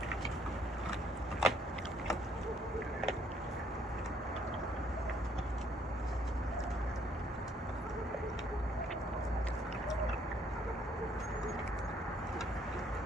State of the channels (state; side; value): normal; both; correlation 0.65